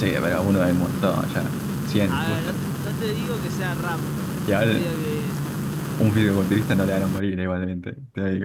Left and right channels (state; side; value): identical; both; correlation 1.00